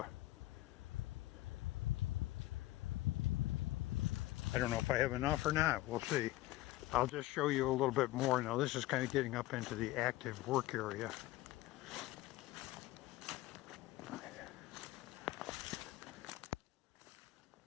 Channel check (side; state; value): right; quieter; 17.1 dB